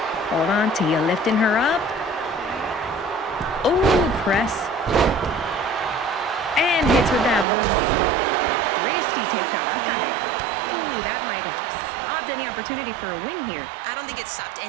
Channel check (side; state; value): left; drops out; at 7.5 s